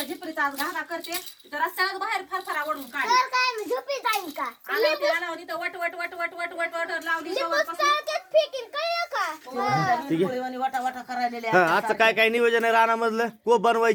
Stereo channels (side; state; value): both; identical; correlation 1.00